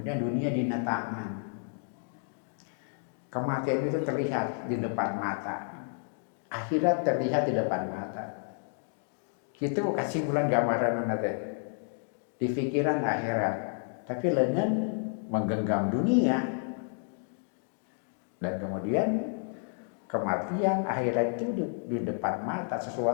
dunia dina tangan. Kematian itu terlihat di depan mata, akhirat terlihat di depan mata. Itu kasih bulan gambaran nanti di pikiran akhirat, tapi lengan menggenggam dunia dan kemudian kematian akhirat itu di depan mata,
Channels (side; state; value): right; silent; 57 dB below the other